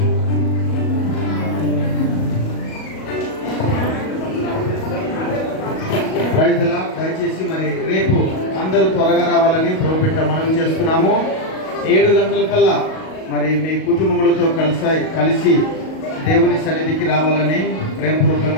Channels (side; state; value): right; late; 38 ms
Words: యు. ప్రైజ్ ది లార్డ్. దయచేసి మరి రేపు అందరూ త్వరగా రావాలని ప్రభుపేట మనం చేస్తున్నాము. 7 గంటలకల్లా మరి మీ కుటుంబములతో కలిసి దేవుని సన్నిధికి రావాలని